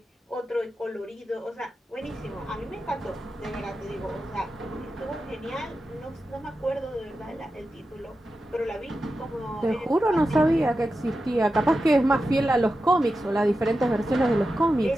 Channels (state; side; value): normal; both; correlation 0.91